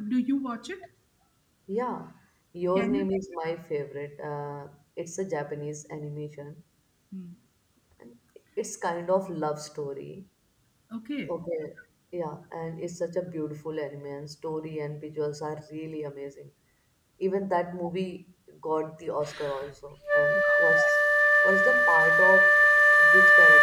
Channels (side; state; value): both; identical; correlation 1.00